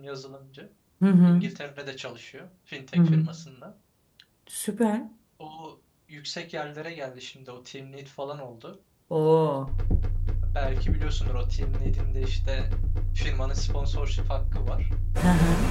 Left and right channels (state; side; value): identical; both; correlation 1.00